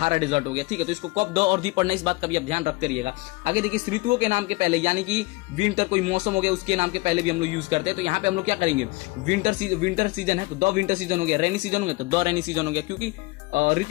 डिजर्ट हो गया। ठीक है, तो इसको कब द और दी पढ़ना है, इस बात का भी आप ध्यान रखते रहिएगा। आगे देखिए ऋतुओं के नाम के पहले, यानी कि विंटर कोई मौसम हो गया उसके नाम के पहले भी हम लोग यूज करते हैं, तो यहाँ पे हम लोग क्या करेंगे, विंटर सीजन है तो द विंटर सीजन हो गया, रेनी सीजन हो गया तो द रेनी सीजन हो गया, क्योंकि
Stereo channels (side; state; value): right; quieter; 23.5 dB